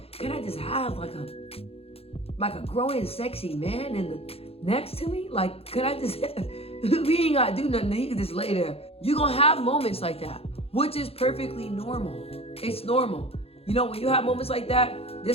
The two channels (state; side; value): late; right; 0.28 ms